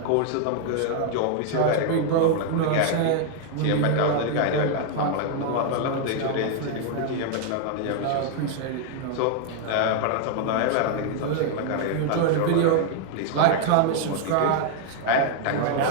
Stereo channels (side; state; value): both; different; correlation 0.00